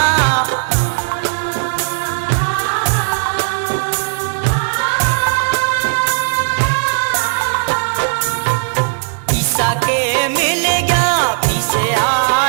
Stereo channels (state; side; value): silent; left; digital silence